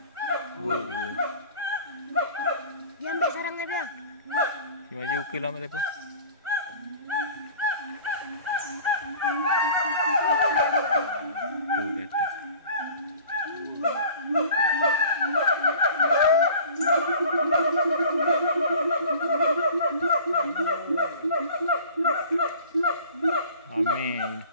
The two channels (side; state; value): both; inverted; correlation -0.44